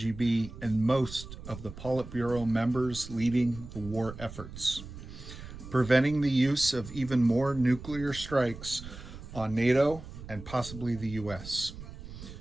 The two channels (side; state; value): right; noise; rumble, 13 dB below the sound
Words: and most of the Politburo members leading the war efforts, preventing the use of even more nuclear strikes on NATO and possibly the US.